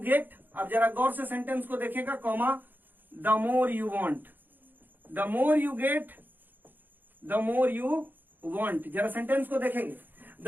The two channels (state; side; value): late; left; 0.089 ms